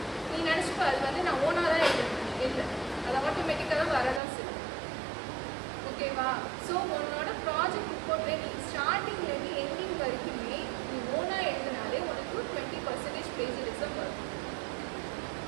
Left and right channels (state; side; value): drops out; left; at 4.2 s